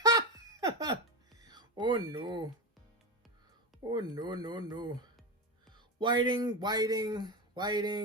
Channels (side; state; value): both; normal; correlation 0.17